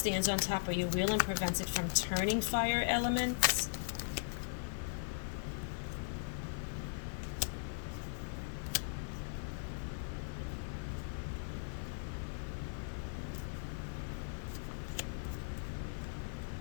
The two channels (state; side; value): silent; right; 52 dB below the other